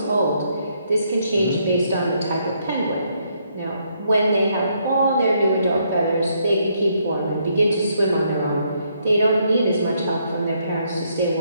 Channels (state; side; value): inverted; both; correlation -0.73